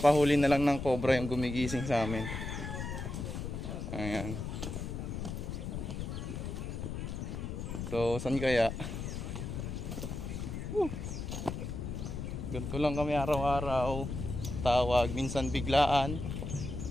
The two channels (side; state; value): left; noise; rumble, 5 dB below the sound